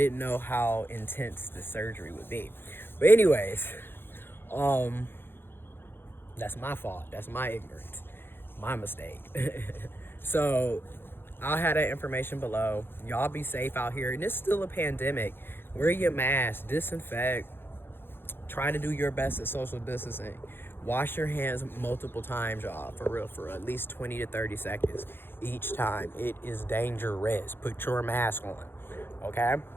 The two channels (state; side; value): late; right; 0.10 ms